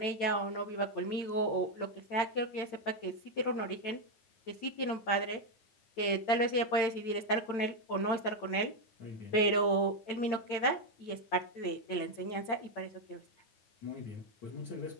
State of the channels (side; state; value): right; late; 8.9 ms